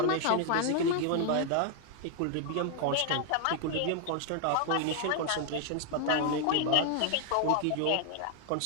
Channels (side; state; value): both; different; correlation 0.00